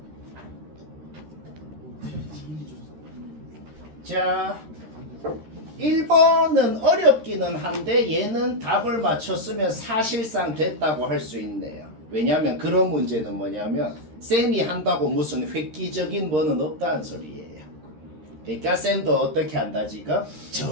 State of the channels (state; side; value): late; left; 13 ms